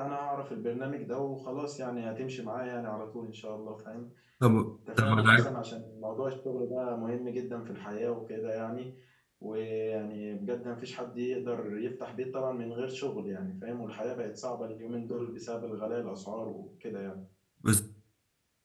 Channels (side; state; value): both; identical; correlation 1.00